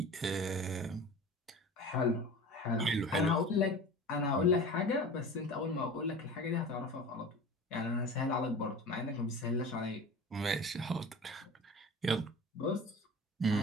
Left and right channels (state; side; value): normal; both; correlation 0.36